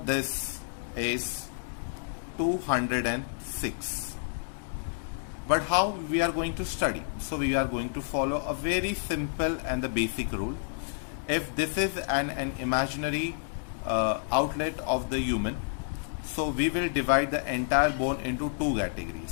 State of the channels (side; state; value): right; silent; digital silence